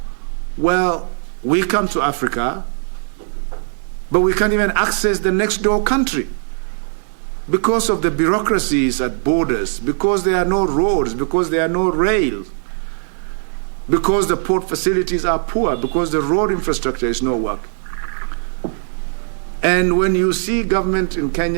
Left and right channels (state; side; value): silent; left; digital silence